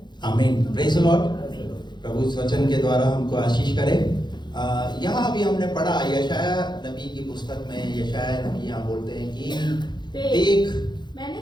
आमीन, प्रेज़ द लॉर्ड। प्रभु इस वचन के द्वारा हमको आशीष करे। यहाँ अभी हमने पढ़ा यशाया नबी की पुस्तक में, यशाया नबी यहाँ बोलते हैं कि देख मैंने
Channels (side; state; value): right; late; 0.21 ms